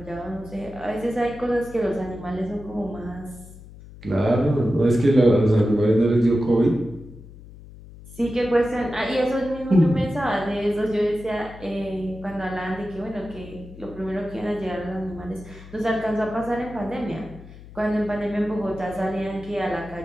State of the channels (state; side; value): noise; left; hum, 18 dB below the sound